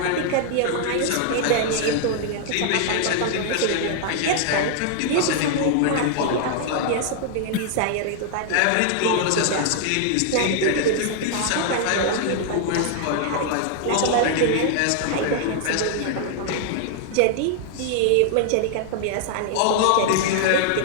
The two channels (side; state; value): both; different; correlation 0.00